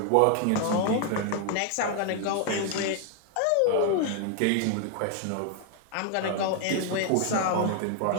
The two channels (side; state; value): both; different; correlation 0.00